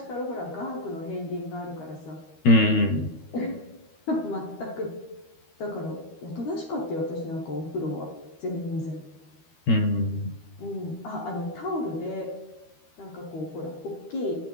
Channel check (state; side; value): late; right; 13 ms